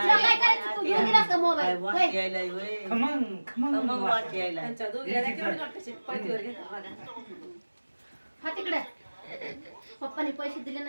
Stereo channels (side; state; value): both; inverted; correlation -1.00